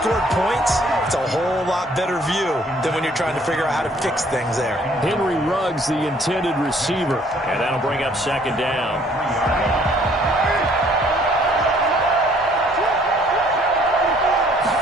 points, it's a whole lot better view than when you're trying to figure out how to fix things there. Henry Ruggs, the intended receiver. And that'll bring up 2nd down.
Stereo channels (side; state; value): both; normal; correlation 0.60